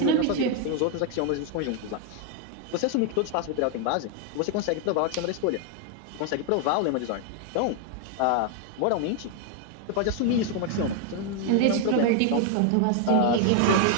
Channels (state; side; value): different; both; correlation 0.00